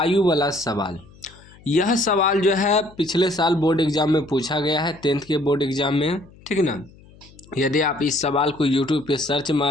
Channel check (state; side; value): noise; left; hum, 24 dB below the sound